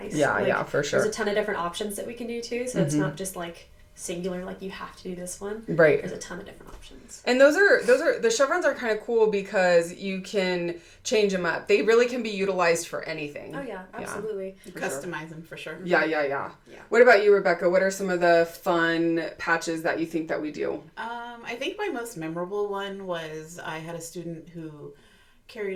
Yeah, for sure. There's a ton of different options that we can do too, so it's not just like singular, like you have to do this one. Right. There's a ton of different options. And those are the chevrons are kind of cool because you can change them up. They really can be utilized for anything. Oh yeah, absolutely. Customize them for sure. Yeah. What about you, Rebecca? What are some of the fun patches that you think that we do? I think my most memorable one was I had a student who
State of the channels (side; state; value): both; identical; correlation 1.00